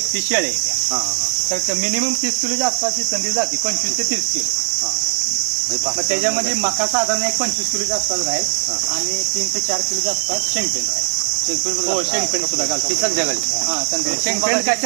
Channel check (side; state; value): left; silent; digital silence